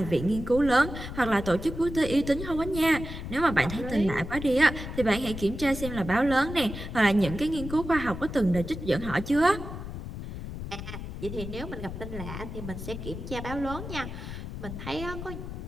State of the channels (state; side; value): noise; left; rumble, 8 dB below the sound